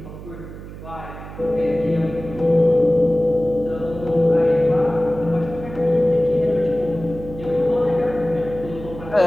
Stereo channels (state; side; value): noise; right; hum, 13 dB below the sound